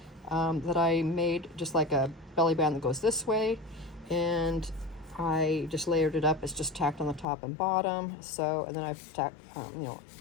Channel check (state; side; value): drops out; right; at 7.2 s